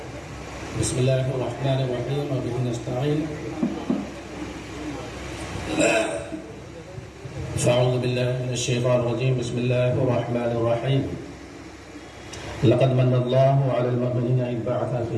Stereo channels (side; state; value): both; identical; correlation 1.00